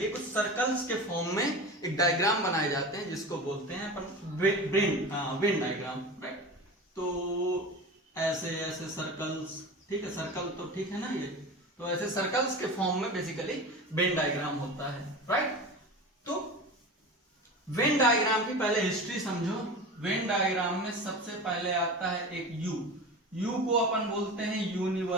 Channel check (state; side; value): normal; both; correlation 0.31